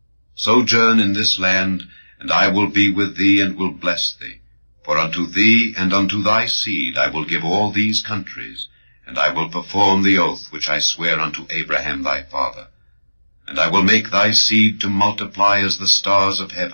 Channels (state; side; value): inverted; both; correlation -1.00